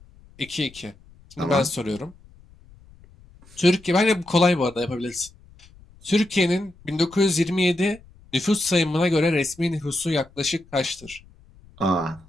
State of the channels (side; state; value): left; noise; rumble, 25 dB below the sound